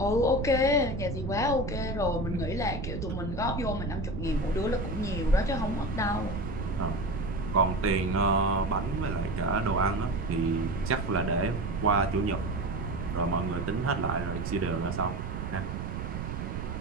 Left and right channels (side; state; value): right; noise; rumble, 5 dB below the sound